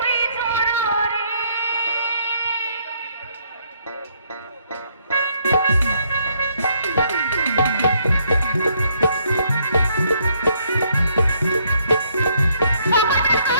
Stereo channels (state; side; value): inverted; both; correlation -0.70